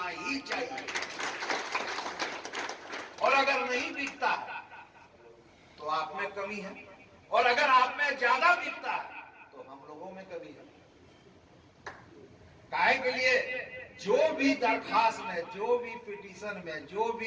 ही चाहिए, और अगर नहीं बिकता तो आप में कमी है, और अगर आप में ज्यादा बिकता है तो हम लोगों में कमी है। काहे के लिए जो भी दरखास्त में, जो भी पिटीशन में, जो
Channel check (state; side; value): identical; both; correlation 1.00